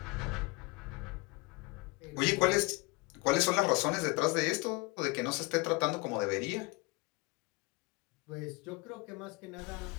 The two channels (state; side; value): quieter; right; 25.9 dB